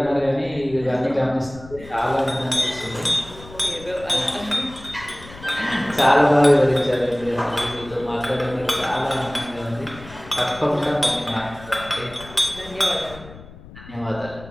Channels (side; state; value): left; noise; rumble, 18 dB below the sound